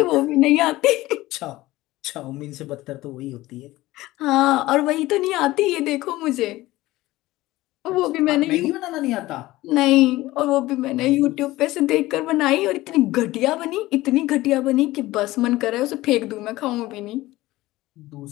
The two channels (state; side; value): quieter; right; 17.8 dB